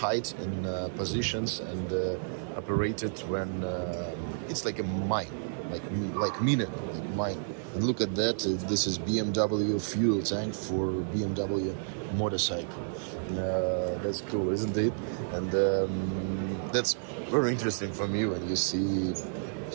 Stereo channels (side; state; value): left; silent; digital silence